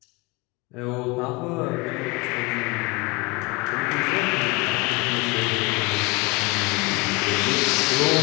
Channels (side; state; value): right; quieter; 25.6 dB